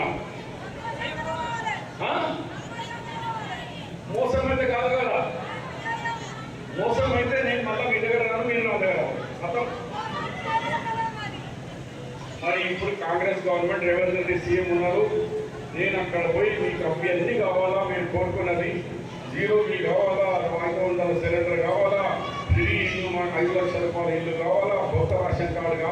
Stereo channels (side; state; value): both; identical; correlation 1.00